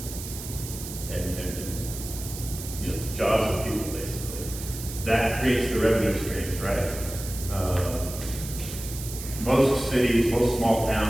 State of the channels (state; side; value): noise; right; hiss, 10 dB below the sound